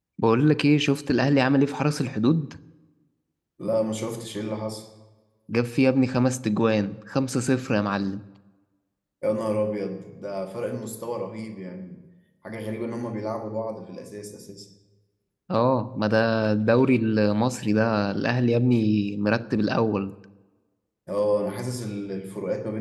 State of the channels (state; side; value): identical; both; correlation 1.00